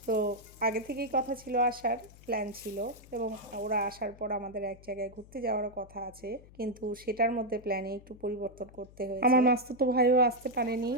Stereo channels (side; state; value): left; noise; hum, 22 dB below the sound